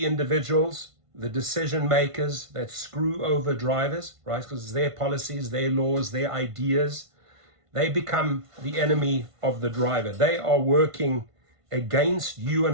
individuals, the decision makers that screw over drivers, right? Because it's their policies, their laws, their ideas. They become the enemy of the driver. They are working against you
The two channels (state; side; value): late; left; 1.5 ms